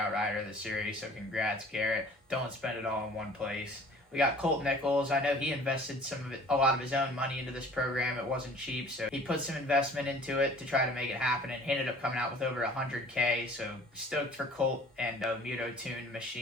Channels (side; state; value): both; normal; correlation 0.49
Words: rider of the series, so congrats, Garrett. Don't spend it all in one place. We got Colt Nichols. I know he invested a lot of his own money into this program. It wasn't cheap, so he put some investment into it to try to make it happen, and he ended up coming out with over $100K. So stoked for Colt and Muto Tune